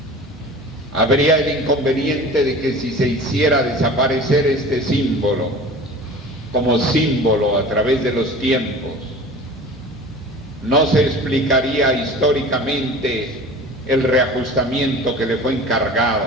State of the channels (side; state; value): both; normal; correlation 0.39